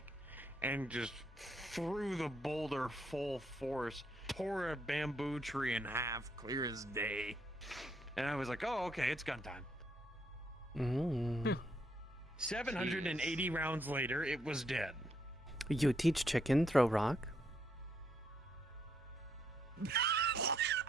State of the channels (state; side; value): normal; both; correlation 0.75